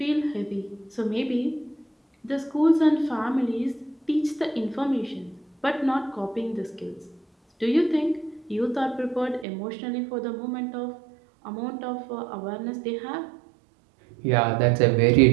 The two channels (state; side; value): drops out; left; at 9.5 s